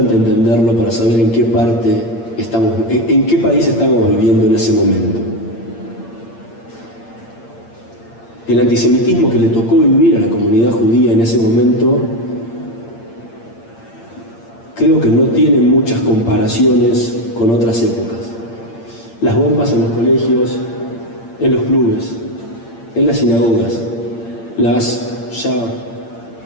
entenderlo para saber en qué país estamos viviendo en ese momento. El antisemitismo que le tocó vivir a la comunidad judía en ese momento creo que no tiene muchas comparaciones con otras épocas. Las bombas en los colegios, en los clubes, en las sinagogas, las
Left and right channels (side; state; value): right; late; 8.8 ms